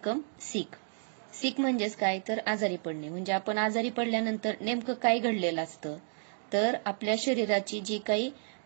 sick. Sick म्हणजेच काय, तर आजारी पडणे. म्हणजे आपण आजारी पडल्यानंतर नेमकं काय घडलेलं असतं, तर आपल्या शरीराची जी काही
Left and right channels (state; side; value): silent; left; digital silence